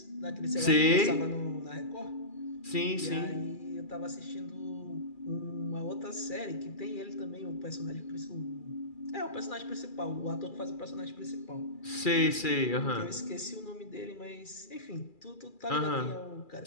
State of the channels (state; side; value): late; right; 2.4 ms